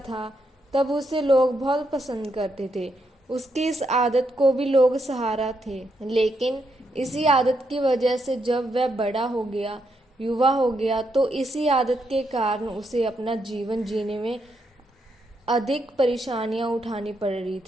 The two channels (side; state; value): both; normal; correlation 0.79